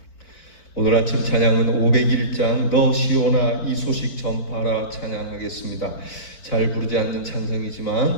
오늘 아침 찬양은 501장 너 시온아 이 소식 전파라 찬양하겠습니다. 잘 부르지 않는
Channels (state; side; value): late; right; 4.4 ms